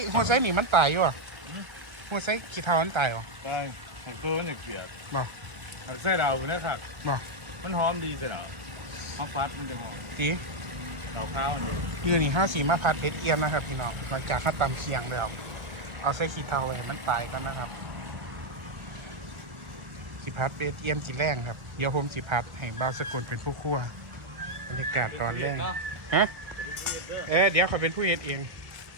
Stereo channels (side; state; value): left; late; 1.7 ms